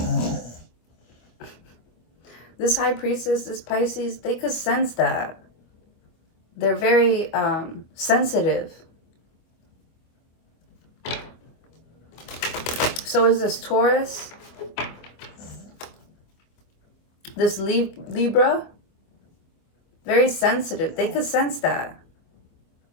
This High Priestess, this Pisces, they could sense that. They're very sensitive. So is this Taurus. This Libra. Very sensitive. They could sense that.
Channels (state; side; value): late; right; 25 ms